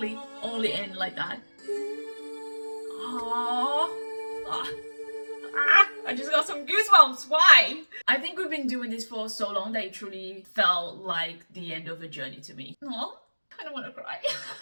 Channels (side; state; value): both; inverted; correlation -1.00